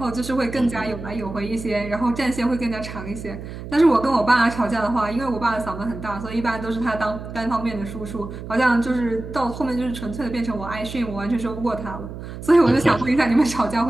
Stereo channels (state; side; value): noise; right; hum, 10 dB below the sound